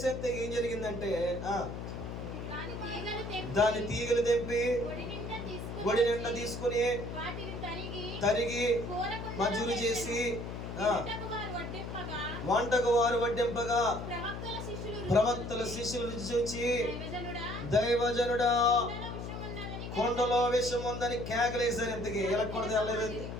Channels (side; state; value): left; noise; hum, 7 dB below the sound